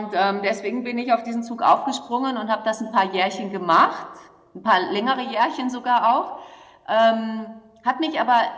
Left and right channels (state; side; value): identical; both; correlation 1.00